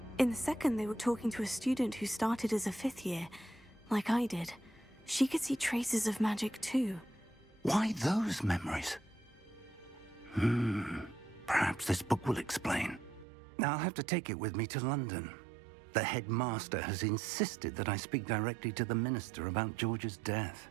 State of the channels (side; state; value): left; drops out; at 13.2 s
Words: In the second, they were talking to a student who started as a 5th year, like I did. She could see traces of magic too. Why those memories? Perhaps this book will explain. I'll have to take it with me to London. The headmaster has insisted that I speak directly to the minister about George's death.